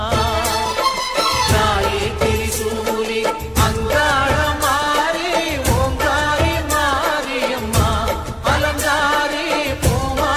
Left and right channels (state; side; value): identical; both; correlation 1.00